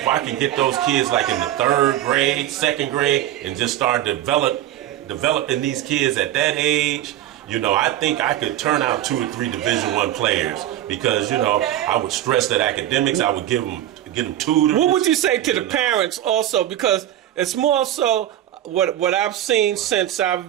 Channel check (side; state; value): left; quieter; 12.6 dB